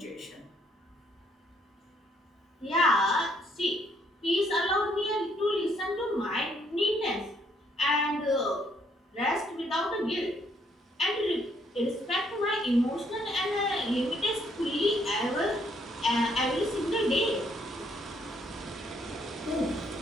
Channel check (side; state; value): both; normal; correlation 0.69